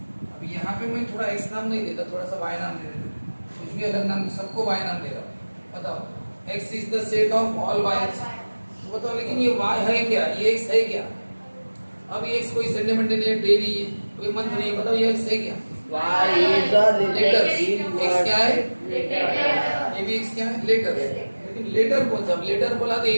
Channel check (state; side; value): inverted; both; correlation -1.00